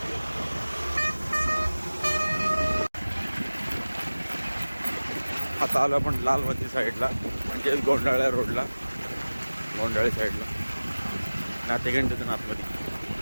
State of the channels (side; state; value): both; inverted; correlation -1.00